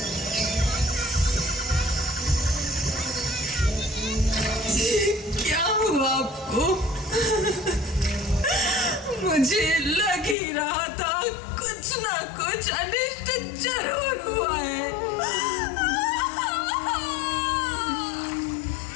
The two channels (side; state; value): right; drops out; at 10.4 s